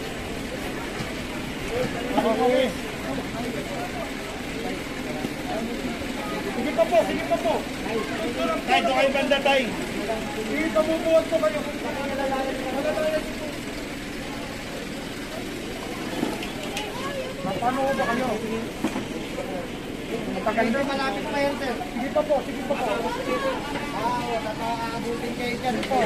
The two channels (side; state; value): both; identical; correlation 1.00